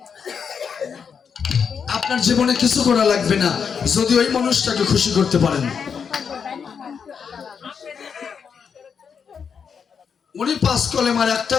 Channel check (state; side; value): quieter; right; 6.6 dB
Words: আপনার জীবনে কিছু করা লাগবে না যদি ওই মানুষটাকে খুশি করতে পারেন। উনি 5 কলেমার একটা